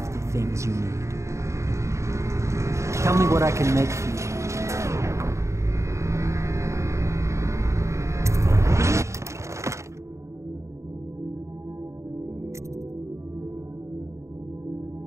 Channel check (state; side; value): late; left; 0.14 ms